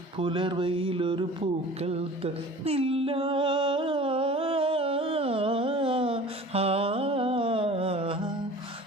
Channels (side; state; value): both; normal; correlation 0.43